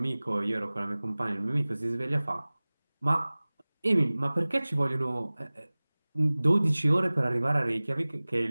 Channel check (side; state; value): both; inverted; correlation -0.99